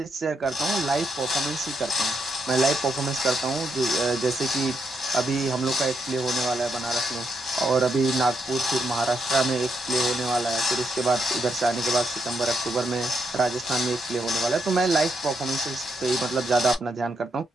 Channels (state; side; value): normal; both; correlation 0.79